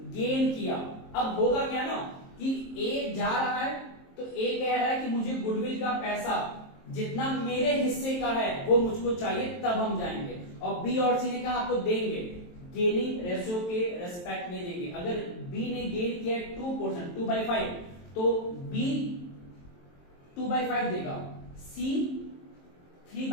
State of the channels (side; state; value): right; late; 23 ms